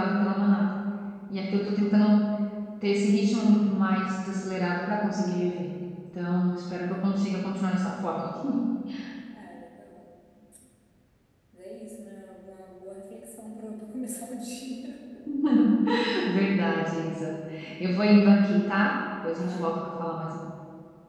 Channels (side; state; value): both; identical; correlation 1.00